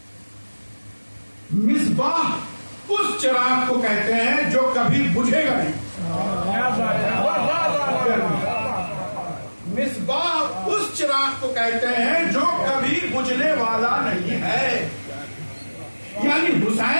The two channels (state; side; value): inverted; both; correlation -1.00